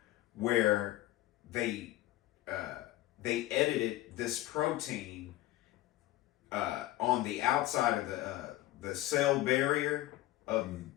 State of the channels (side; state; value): right; quieter; 15.9 dB